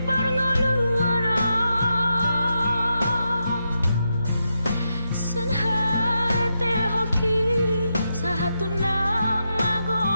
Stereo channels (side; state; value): both; inverted; correlation -0.85